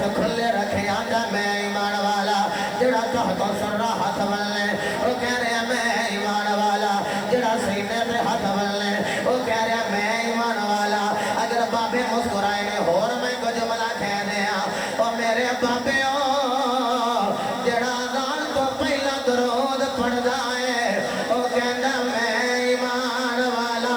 کھلے رکھے آتا میں ایمان والا جڑا تحت سر رہا ہاتھ بنلے وہ کہہ رہا میں ایمان والا جڑا سینے پہ ہاتھ بنلے وہ کہہ رہا میں ایمان والا اگر بابے مسکرائے نے اور میں کو جملہ کہہ دیا اور میرے بابے جڑا دان تو پہلا درود پڑھ جائے وہ کہنا میں ایمان والا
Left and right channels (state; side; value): noise; right; hiss, 25 dB below the sound